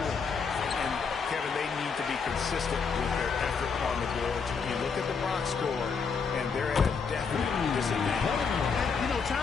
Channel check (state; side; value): quieter; right; 5.5 dB